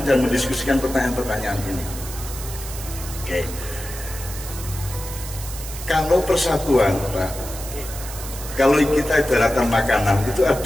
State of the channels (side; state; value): right; noise; hiss, 11 dB below the sound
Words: dan mendiskusikan pertanyaan-pertanyaan ini. Oke. Kalau persatuan, Pak, kalau kita ibaratkan makanan, itu